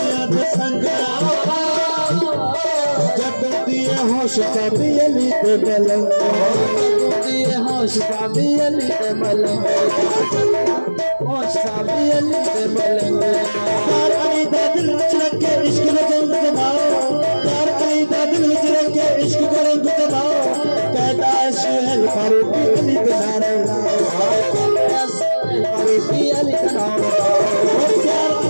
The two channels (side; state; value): both; inverted; correlation -1.00